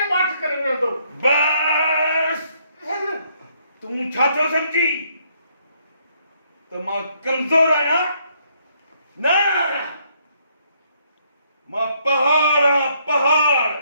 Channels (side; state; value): both; inverted; correlation -0.70